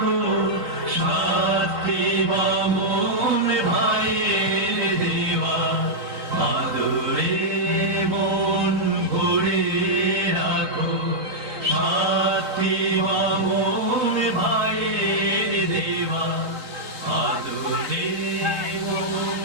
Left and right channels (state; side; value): late; left; 3.5 ms